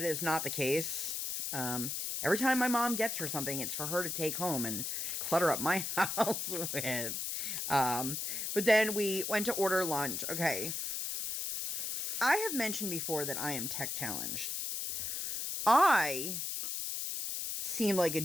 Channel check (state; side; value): noise; left; hiss, 2 dB below the sound